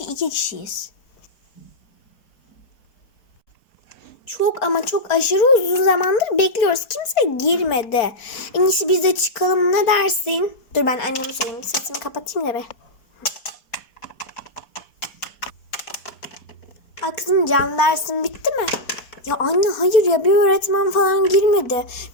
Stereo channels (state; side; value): late; right; 4.4 ms